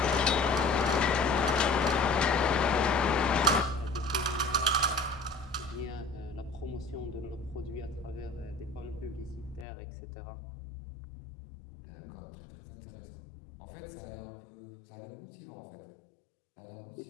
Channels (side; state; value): right; drops out; at 9.7 s